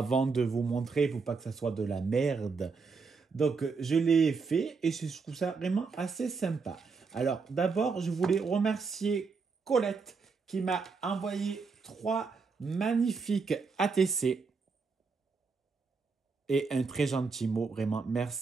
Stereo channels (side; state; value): left; quieter; 4.8 dB